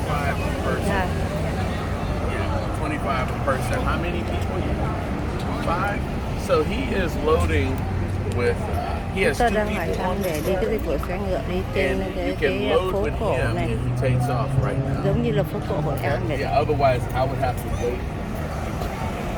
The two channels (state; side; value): identical; both; correlation 1.00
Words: per person. Yeah. Yeah, 25 a person. How many people? 5. So he is loading with. He has 2 Tôi đang hỏi people thăm on để this đi cái boat, dịch vụ xe ngựa đi trên and you cái can load phố with cổ him này, and he takes off right now. giống như là phố cổ Hội An vậy. Yeah, otherwise I would have to wait.